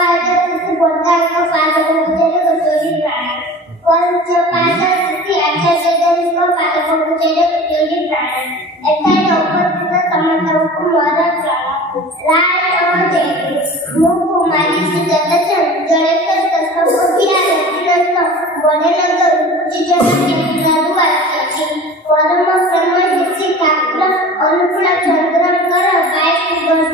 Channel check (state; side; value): normal; both; correlation 0.39